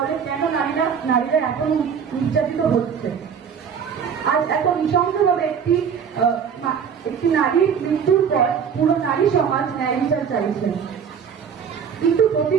কেন নারীরা এখন নির্যাতিত হচ্ছে? আজ এত নৃশংসভাবে একটি নারীর মৃত্যুর পর পুরো নারী সমাজ ন্যায় বিচার চাইছে, কিন্তু প্রতি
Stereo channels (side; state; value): left; quieter; 7.2 dB